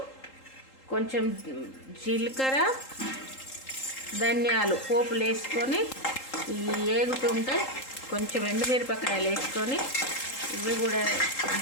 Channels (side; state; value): right; late; 3.8 ms